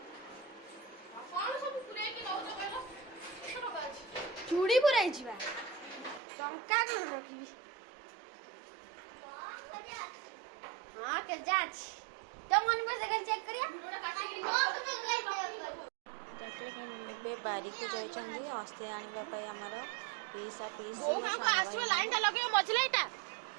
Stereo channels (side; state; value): left; drops out; at 6.2 s